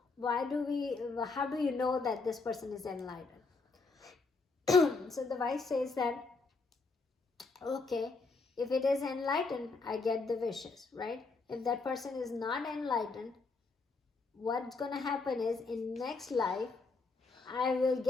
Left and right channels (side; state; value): right; quieter; 4.0 dB